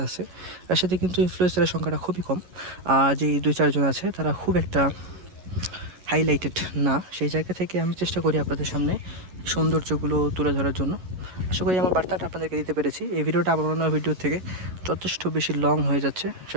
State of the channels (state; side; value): late; left; 11 ms